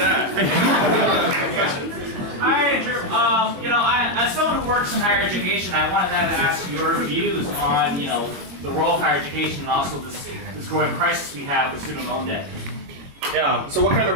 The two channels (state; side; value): late; left; 22 ms